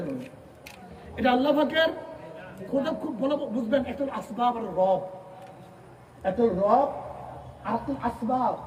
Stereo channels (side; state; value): both; identical; correlation 1.00